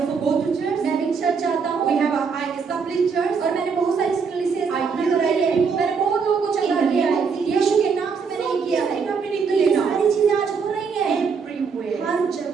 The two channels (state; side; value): quieter; left; 5.6 dB